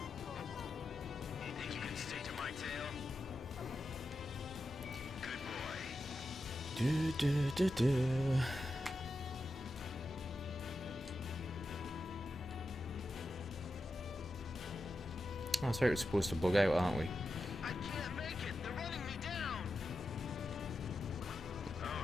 You think you can stay to my tail? Good boy. Do do do do. Oh, sorry, we're supposed to bug out, aren't we? I can't make it. They're running me down.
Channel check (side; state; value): both; normal; correlation 0.90